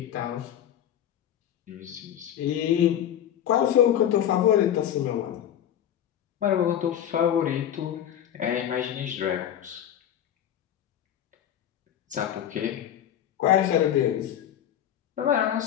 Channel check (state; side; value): quieter; right; 10.5 dB